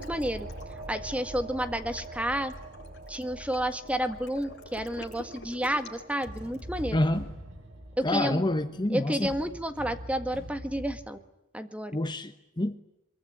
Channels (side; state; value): both; normal; correlation 0.78